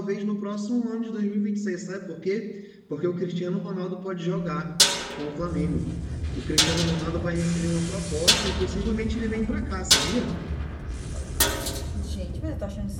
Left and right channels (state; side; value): identical; both; correlation 1.00